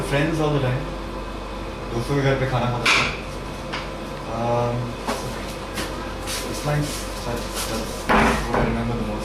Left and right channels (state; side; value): identical; both; correlation 1.00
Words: friends all the time. दोस्तों के घर पे खाना खाता था. It's nice. That's what I remember the